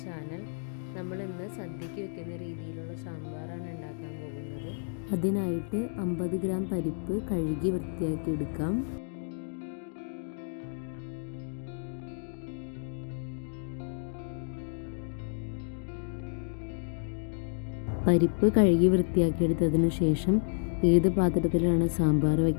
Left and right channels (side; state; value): right; silent; digital silence